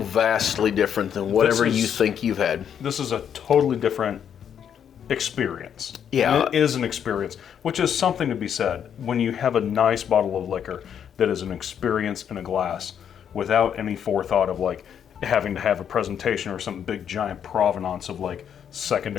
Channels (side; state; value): right; quieter; 8.5 dB